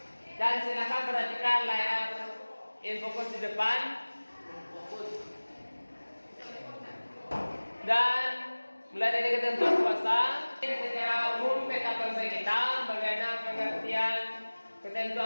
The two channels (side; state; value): both; inverted; correlation -1.00